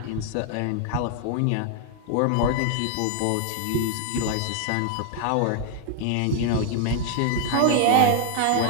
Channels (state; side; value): different; both; correlation 0.00